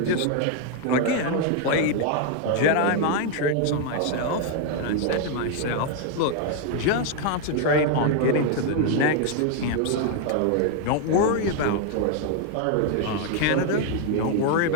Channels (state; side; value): different; both; correlation 0.01